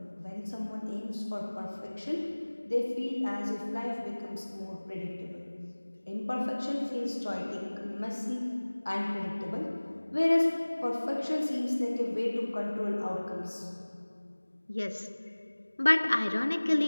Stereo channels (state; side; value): inverted; both; correlation -1.00